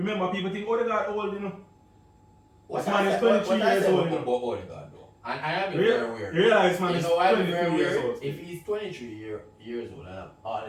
people think Odegaard old, This man is 23 years old. About Odegaard though, and I am very weird. You realize man is I'm 23 very years weird. old. If he's 23 years old and have all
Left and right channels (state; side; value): identical; both; correlation 1.00